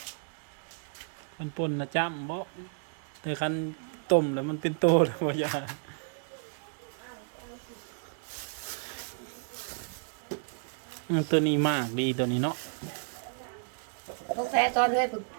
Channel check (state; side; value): silent; left; digital silence